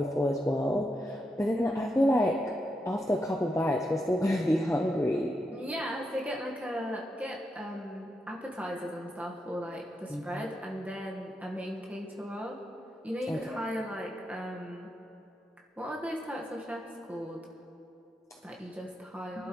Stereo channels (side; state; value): both; normal; correlation 0.84